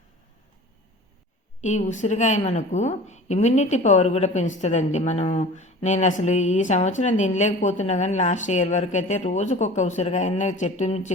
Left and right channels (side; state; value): both; normal; correlation 0.40